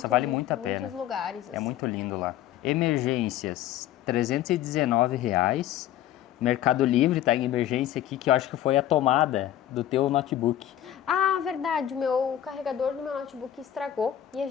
vale muito a pena. Muitos lugares. É muito lindo lá. Emergências, R$ 319. Mercado Livre tá em emergência aqui, que eu acho que foi a tomada do teu notebook. Verdade. O carregador do meu notebook estragou e a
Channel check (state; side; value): quieter; right; 11.8 dB